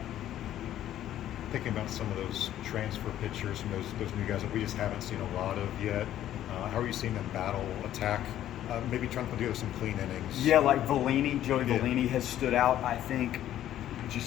Thinking about some of those transfer pitchers and those new guys that we just haven't seen a lot of yet, how are you seeing them battle, attack, maybe trying to put together some clean innings? Yeah, like Joey Vellini has stood out. I think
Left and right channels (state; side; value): quieter; right; 12.1 dB